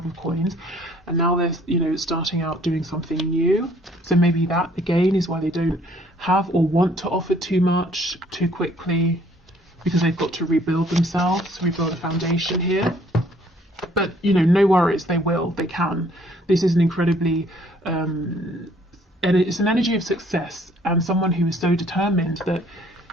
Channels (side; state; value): both; normal; correlation 0.60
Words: of Coins, and now they're, you know, starting out doing something new. So maybe that, again, is why they don't have or want to offer too much too quickly, because they've got to rebuild themselves, rebuild a foundation here. But, you know, no worries, they will, they can. This is an incredibly, and it's an energy of success, and someone who is so determined that